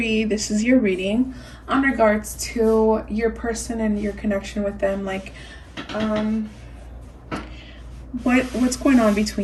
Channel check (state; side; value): identical; both; correlation 1.00